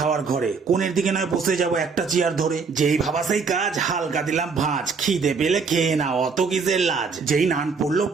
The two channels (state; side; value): quieter; left; 5.1 dB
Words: ঘরে। কোণের দিকে নয় বসে যাব একটা চেয়ার ধরে। যেই ভাবা সেই কাজ, হালকা দিলাম ভাঁজ। খিদে পেলে খেয়ে না, অত কিসের লাজ। যেই নান পড়লো